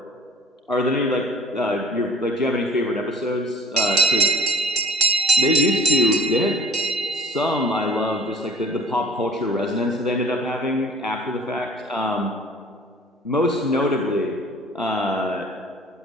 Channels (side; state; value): both; normal; correlation 0.49